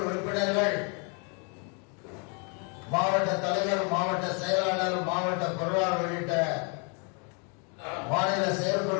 உறுப்பினர்கள், மாவட்ட தலைவர், மாவட்ட செயலாளர், மாவட்ட பொருளாளர் உள்ளிட்ட மாநில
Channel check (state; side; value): quieter; right; 36.4 dB